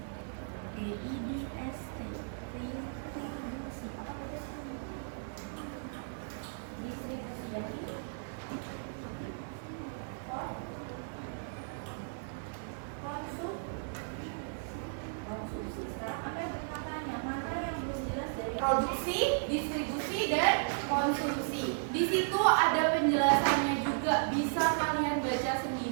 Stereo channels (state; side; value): silent; left; digital silence